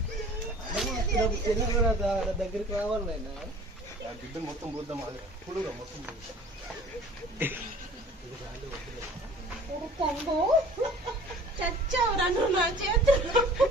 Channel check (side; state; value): both; normal; correlation 0.48